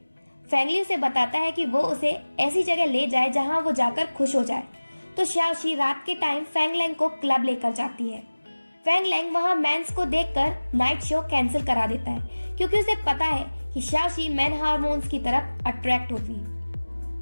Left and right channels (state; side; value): inverted; both; correlation -1.00